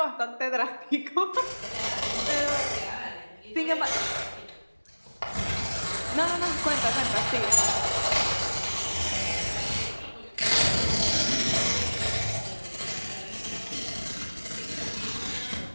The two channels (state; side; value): inverted; both; correlation -1.00